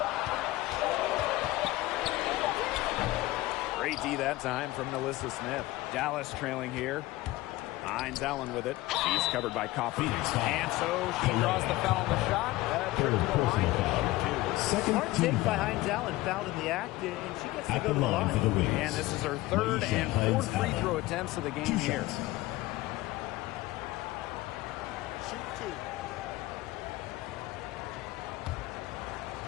Great D that time from Melissa Smith. Dallas trailing here. Hines Allen with it. She's covered by Coffey. And so she draws the foul on the shot. Trip to the line. Smart take by Hines Allen, fouled in the act, and she gets to go to the line. For the wins. And this is her 3rd and 4th free throw attempts of the game here. Shoot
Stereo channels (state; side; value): quieter; right; 18.4 dB